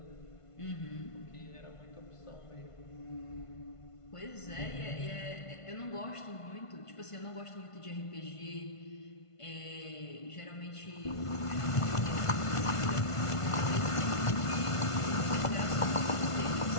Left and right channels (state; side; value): late; right; 1.5 ms